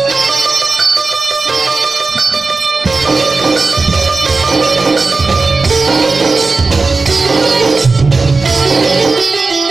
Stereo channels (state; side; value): quieter; left; 4.0 dB